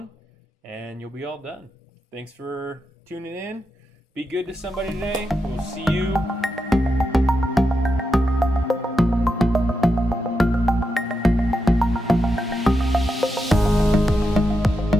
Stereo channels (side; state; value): both; normal; correlation 0.86